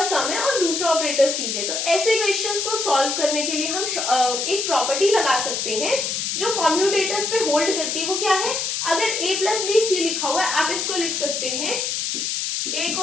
सम है और दूसरा ऑपरेटर सी है। तो ऐसे क्वेश्चंस को सॉल्व करने के लिए हम एक प्रॉपर्टी लगा सकते हैं जो कॉम्यूटेटर्स पे होल्ड करती है। वो क्या है? अगर a प्लस बी सी लिखा हुआ है, आप इसको लिख सकते हैं a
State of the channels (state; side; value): noise; left; hiss, 1 dB below the sound